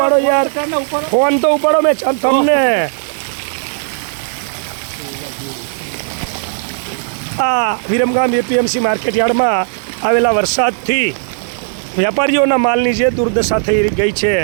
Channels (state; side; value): silent; left; digital silence